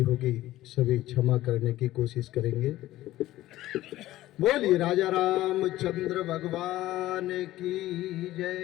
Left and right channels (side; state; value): right; quieter; 15.5 dB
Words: होगी सभी क्षमा करने की कोशिश करेंगे। बोलिए राजा रामचंद्र भगवान की